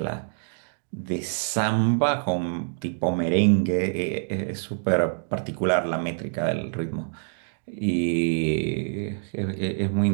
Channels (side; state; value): left; silent; digital silence